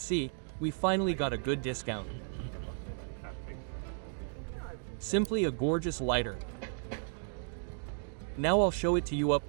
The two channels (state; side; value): silent; left; 55 dB below the other